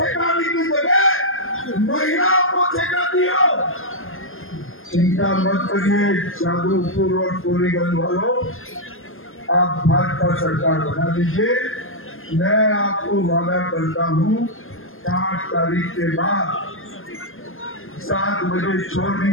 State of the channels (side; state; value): right; late; 0.59 ms